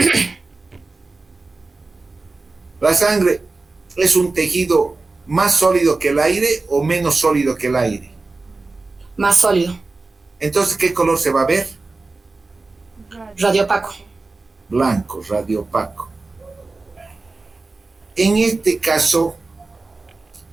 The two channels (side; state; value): left; quieter; 3.6 dB